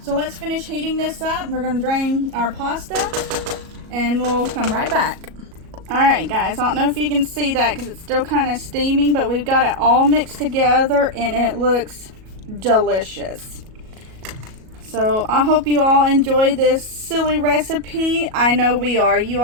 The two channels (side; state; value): left; late; 37 ms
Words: So let's finish heating this up. We're gonna drain our pasta and we'll come right back. Alright guys, I don't know if you can see that because it's still kind of steaming, but we've got it all mixed together and it looks delicious. So I hope you all enjoy this silly recipe. I know we are. You